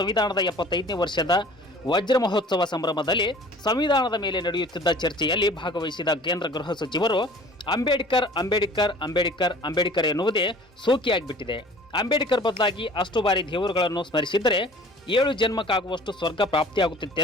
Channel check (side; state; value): both; normal; correlation 0.48